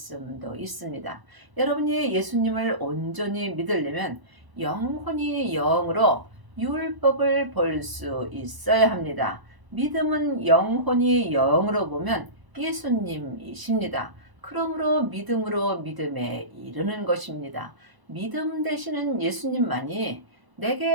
있습니다. 여러분이 예수님을 온전히 믿으려면 영혼이 영으로 율법을 볼 수 있어야 합니다. 믿음은 영혼이 영으로 보면 예수님이십니다. 그러므로 믿음으로 믿음에 이르는 것입니다. 믿음 되시는 예수님만이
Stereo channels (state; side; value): late; left; 1.0 ms